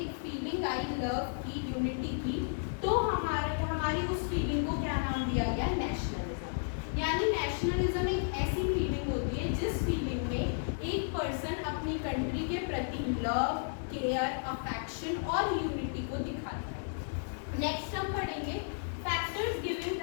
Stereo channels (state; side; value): silent; right; 56 dB below the other